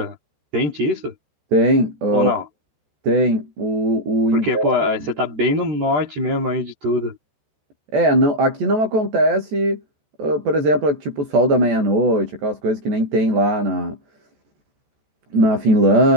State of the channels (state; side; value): late; left; 14 ms